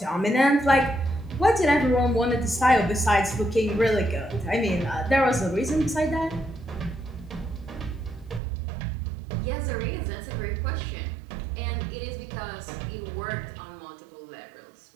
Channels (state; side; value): drops out; left; at 8.4 s